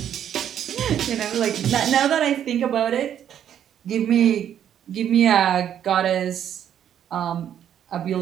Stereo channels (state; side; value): quieter; left; 9.8 dB